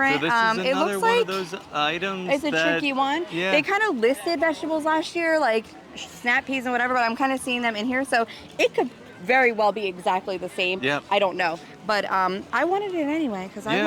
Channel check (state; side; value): identical; both; correlation 1.00